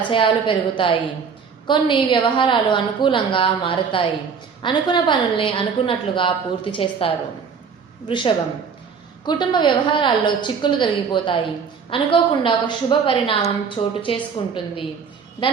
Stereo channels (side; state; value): left; quieter; 6.1 dB